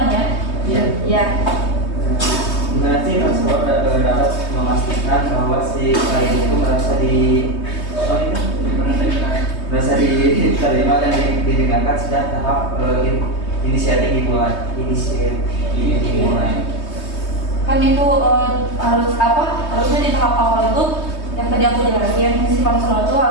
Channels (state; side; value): late; right; 3.2 ms